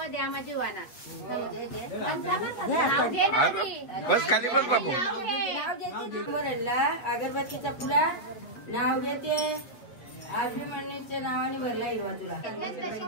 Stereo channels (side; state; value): right; late; 8.6 ms